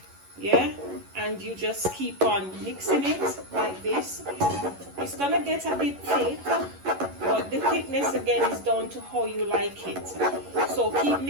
Yeah, and you just keep on mixing it like this. It's gonna get a bit thick, but the thickness again is down to how you like it. So keep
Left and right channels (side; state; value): left; late; 11 ms